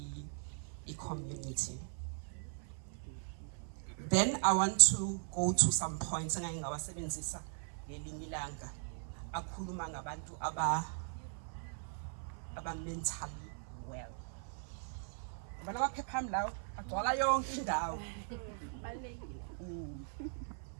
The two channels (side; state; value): left; silent; 52 dB below the other